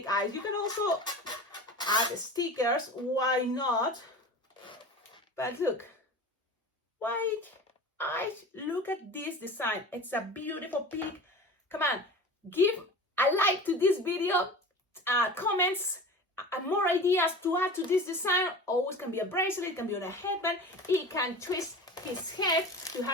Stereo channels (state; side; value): normal; both; correlation 0.35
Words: eyes. You can also add stickers, why not? But look, white eyes, look at this design. It's a beautiful pig. Come on, give a like to this video, comments, more ideas to add to this design. Always can be a bracelet, it can be on a headband, it can twist his head to